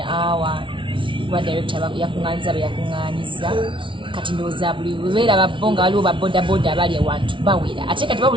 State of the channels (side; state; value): left; late; 0.25 ms